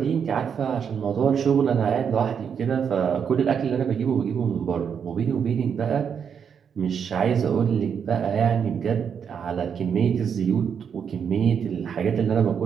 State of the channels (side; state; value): left; quieter; 7.3 dB